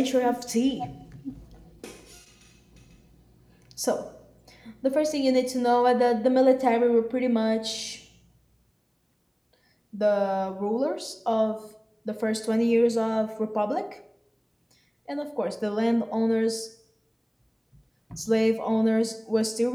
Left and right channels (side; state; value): both; identical; correlation 1.00